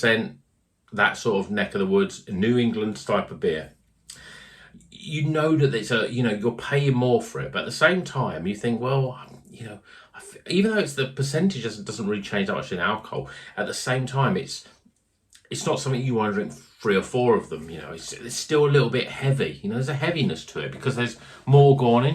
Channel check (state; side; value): identical; both; correlation 1.00